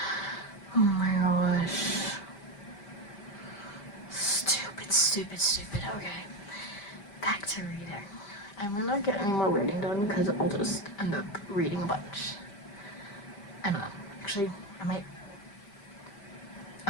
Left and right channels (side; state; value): right; late; 5.1 ms